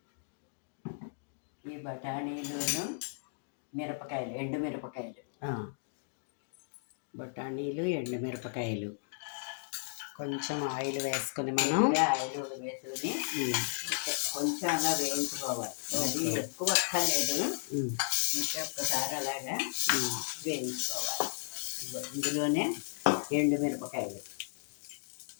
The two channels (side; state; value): right; silent; digital silence